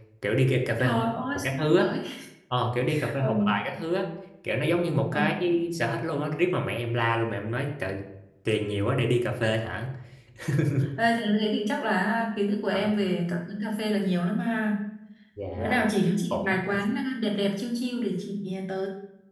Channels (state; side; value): identical; both; correlation 1.00